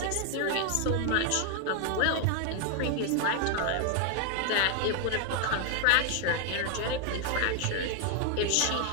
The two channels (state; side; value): different; both; correlation 0.00